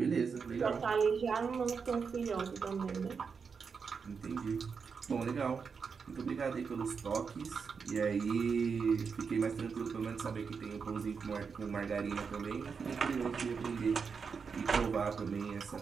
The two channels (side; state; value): left; quieter; 5.7 dB